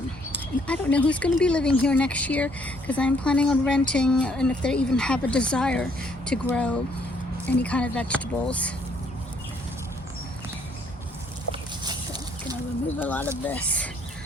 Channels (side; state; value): both; normal; correlation 0.67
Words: and I don't know who's going to be living here next year, because I'm planning on renting, and if they even have a desire to grow any kind of vegetables. So I'm going to remove a lot of this.